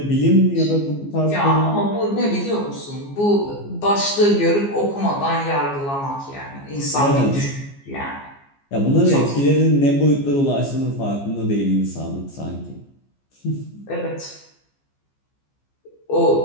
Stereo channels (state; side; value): late; right; 15 ms